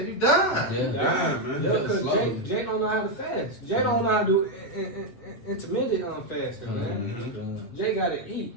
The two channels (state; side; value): late; right; 8.2 ms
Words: died. Yeah. Damn, man. Yeah, because Slow. Jake don't know how to fast. Jake don't know how to do intermittent fasting, man. Mhm. Jay gotta eat.